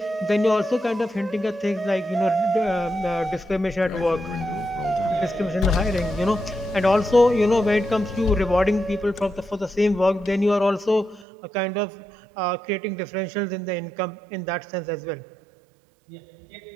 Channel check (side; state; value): left; drops out; at 11.2 s